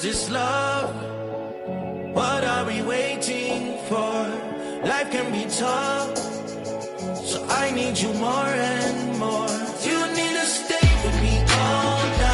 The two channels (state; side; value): identical; both; correlation 1.00